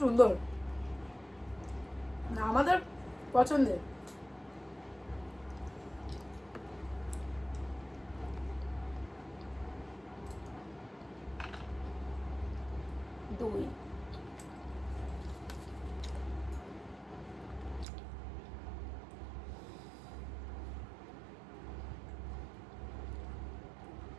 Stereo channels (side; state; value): left; drops out; at 17.9 s